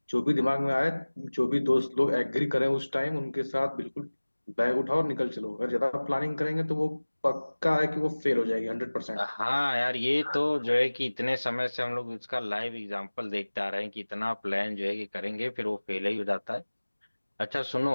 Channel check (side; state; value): both; inverted; correlation -1.00